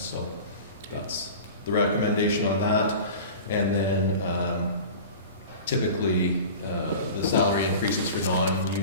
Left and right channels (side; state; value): both; inverted; correlation -0.36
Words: that's the recommendation on that. And then typically the salary increases for